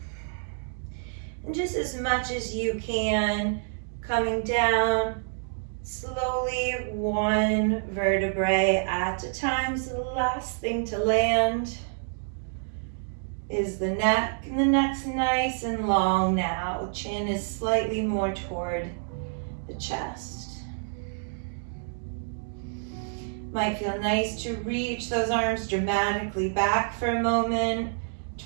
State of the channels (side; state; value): left; silent; digital silence